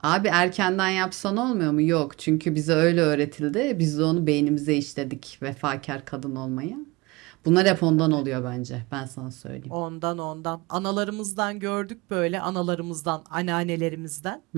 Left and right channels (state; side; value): quieter; left; 23.3 dB